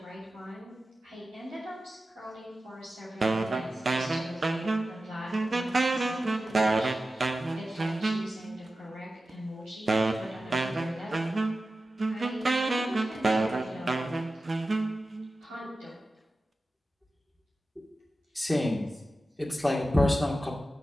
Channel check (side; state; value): both; normal; correlation 0.94